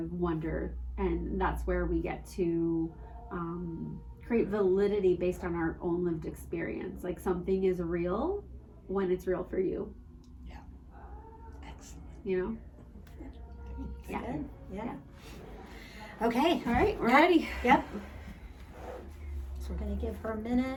wonder. And that's where we get to create validity based on our own lived experience. Like something is real when it's real for you. Yeah. Excellent. You know? Yeah. Good. Yeah. Yeah. Okay. All right, we're ready. Yep. So we're going to give her a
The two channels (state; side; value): identical; both; correlation 1.00